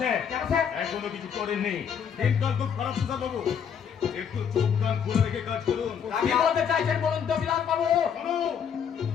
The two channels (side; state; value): right; quieter; 7.7 dB